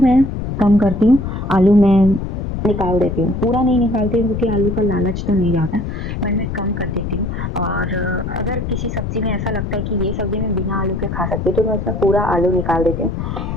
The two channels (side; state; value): left; noise; rumble, 4 dB below the sound